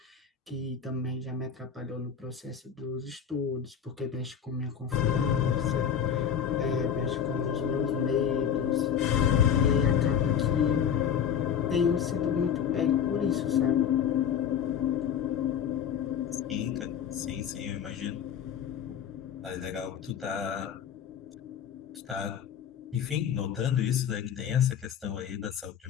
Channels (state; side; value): quieter; right; 8.2 dB